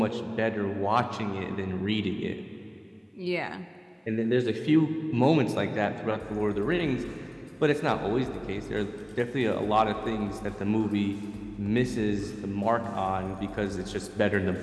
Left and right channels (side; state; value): both; identical; correlation 1.00